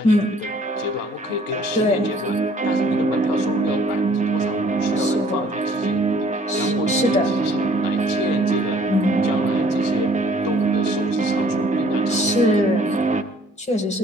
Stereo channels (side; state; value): both; normal; correlation 0.58